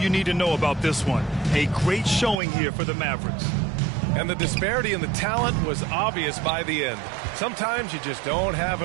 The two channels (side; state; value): left; drops out; at 2.4 s